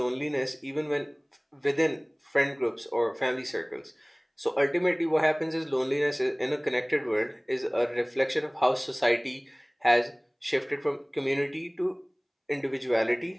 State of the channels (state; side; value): identical; both; correlation 1.00